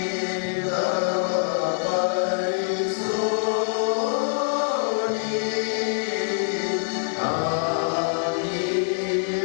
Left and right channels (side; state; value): right; silent; digital silence